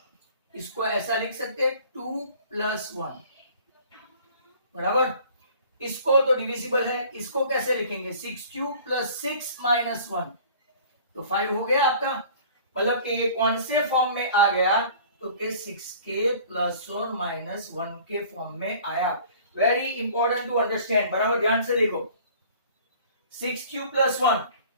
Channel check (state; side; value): inverted; both; correlation -0.49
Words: इसको ऐसा लिख सकते हैं 2 प्लस 1, बराबर। इसको तो डिविजिबल है, इसको कैसे लिखेंगे? 6q प्लस 6 माइनस 1, तो 5 हो गया आपका। मतलब कि ये कौन से फॉर्म में आ गया? तो के 6k प्लस और माइनस 1 के फॉर्म में आया। वेरी इंपॉर्टेंट टू अंडरस्टैंड, बराबर ध्यान से देखो। 6q plus 1,